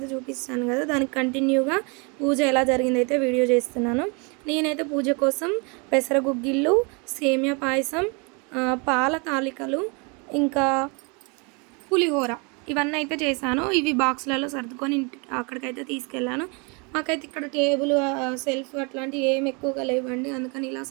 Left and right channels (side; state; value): left; quieter; 32.0 dB